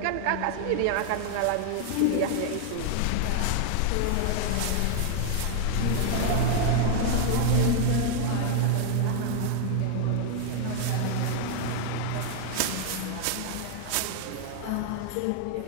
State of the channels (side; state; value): both; different; correlation 0.00